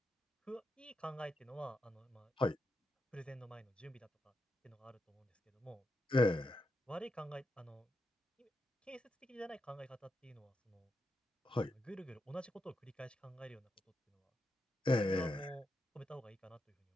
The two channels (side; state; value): both; normal; correlation 0.85